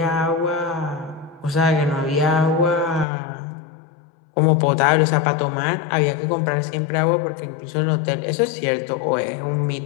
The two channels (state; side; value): drops out; right; at 3.1 s